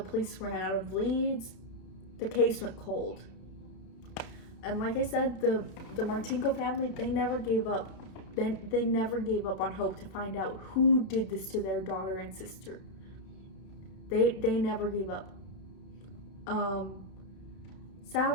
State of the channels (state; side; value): late; right; 31 ms